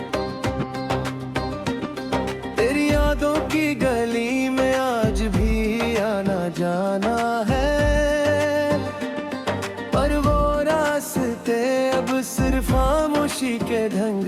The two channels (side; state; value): both; identical; correlation 1.00